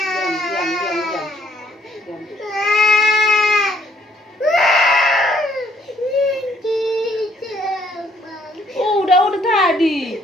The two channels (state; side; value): normal; both; correlation 0.66